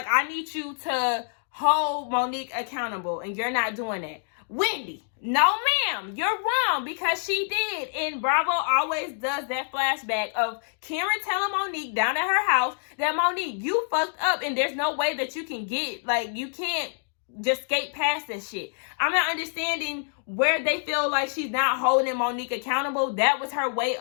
I need you to hold Monique accountable, and you're not doing that. Wendy, no ma'am, you're wrong, because she did. And Bravo always does that flashback of Karen telling Monique down at her house that, Monique, you fucked up, and there's no way that you can you can't just skate past this shit. I'm not understanding where they feel like she's not holding Monique accountable. That was her way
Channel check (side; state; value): right; silent; digital silence